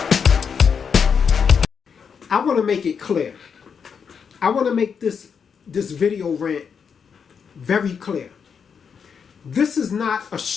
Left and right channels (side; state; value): right; quieter; 6.6 dB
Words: I want to make it clear. I want to make this video rant very clear. This is not a